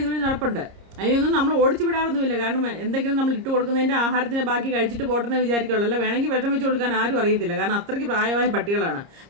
ഇതുവഴി നടപ്പുണ്ട്. അതിനൊന്നും നമ്മൾ ഓടിച്ചു വിടാറൊന്നുമില്ല. കാരണം എന്തെങ്കിലും നമ്മൾ ഇട്ട് കൊടുക്കുന്നതിൻ്റെ ആഹാരത്തിൻ്റെ ബാക്കി കഴിച്ചിട്ട് പോട്ടെന്ന് വിചാരിക്കുള്ളൂ. അല്ല വേണമെങ്കിൽ വിഷം വെച്ച് കൊടുക്കാൻ ആരും അറിയത്തില്ല. കാരണം അത്രയ്ക്ക് പ്രായമായ പട്ടികളാണ്.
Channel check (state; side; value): late; left; 30 ms